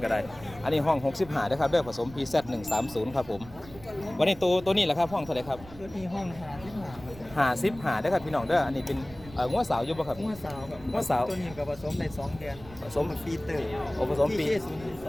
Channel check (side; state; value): right; noise; rumble, 18 dB below the sound